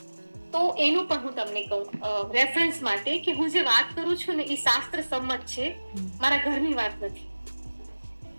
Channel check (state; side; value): inverted; both; correlation -1.00